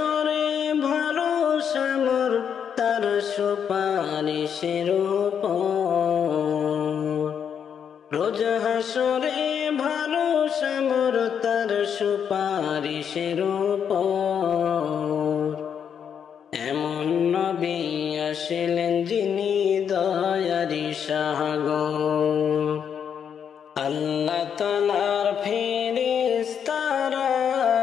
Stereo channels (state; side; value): quieter; right; 7.8 dB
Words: ভরসা মোর তার সুপারিশের উপর রোজ হাসরে ভরসা মোর তার সুপারিশের উপর এমন নবী আসলেন যিনি দয়ারি সাগর আল্লাহ তাআলার ফেরেশতারা